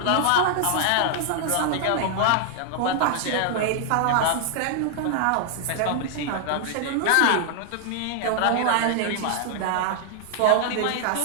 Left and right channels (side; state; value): both; different; correlation 0.00